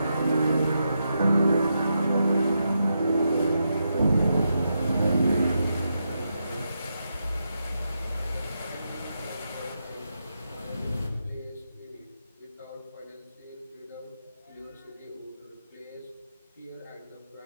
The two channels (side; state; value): both; inverted; correlation -0.84